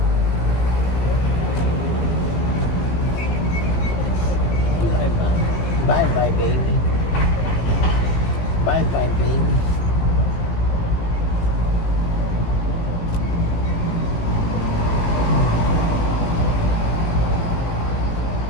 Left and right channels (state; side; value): late; right; 17 ms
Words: Bye bye, baby. Bye bye, baby.